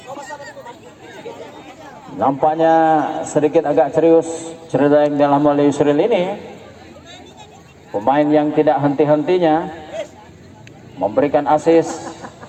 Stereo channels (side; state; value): both; identical; correlation 1.00